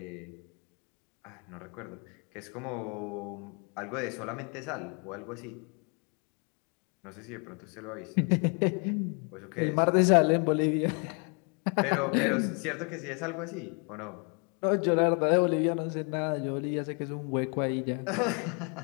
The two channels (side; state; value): right; quieter; 36.1 dB